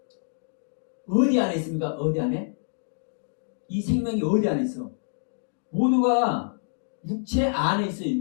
어디 안에 있습니까? 어디 안에? 이 생명이 어디 안에 있어? 모두가 육체 안에 있어요.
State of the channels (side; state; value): right; silent; digital silence